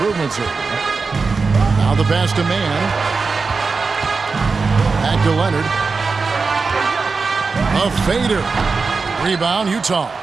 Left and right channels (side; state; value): left; quieter; 4.5 dB